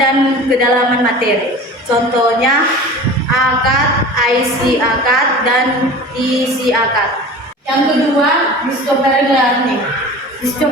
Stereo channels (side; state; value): both; normal; correlation 0.38